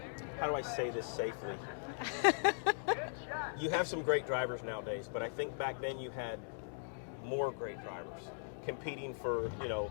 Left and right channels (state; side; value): silent; right; digital silence